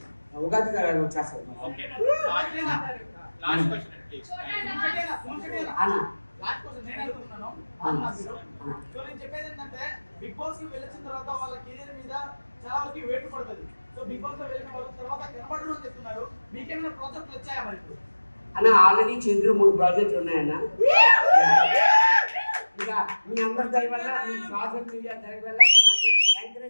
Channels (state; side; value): inverted; both; correlation -1.00